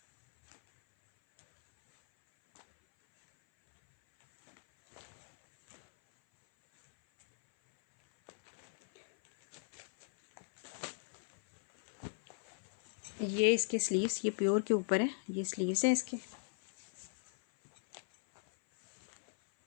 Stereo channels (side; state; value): right; silent; 53 dB below the other